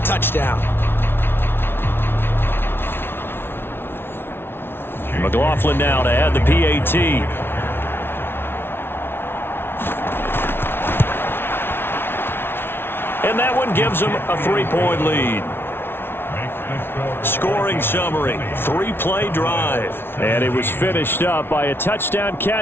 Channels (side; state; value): right; late; 0.11 ms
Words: touchdown. McLaughlin now to add the PAT. And that one gives them a 3-point lead. Scoring summary, 3-play drive. And it was finished up by a touchdown